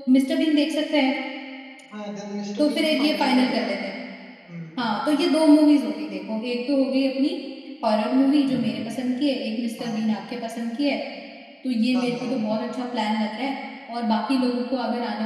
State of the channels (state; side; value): identical; both; correlation 1.00